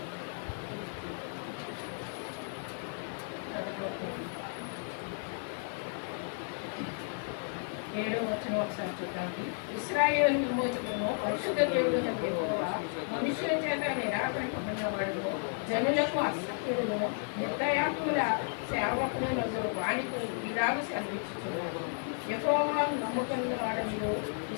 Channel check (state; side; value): silent; right; 56 dB below the other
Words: 7వ వచనం ఒకసారి చూద్దామండి. ఇశ్రాయేలు విమోచకును పరిశుద్ధ దేవుడును యెహోవా మనుషుల చేత నిరాకరింపబడినవాడు, జనులకు అసత్యుడును నిర్దయాత్ముల సేవకుడు వాణితో ఇలాగ సెలవిచ్చుచున్నాడు. యెహోవాను నమ్ముకున్న వాడనియు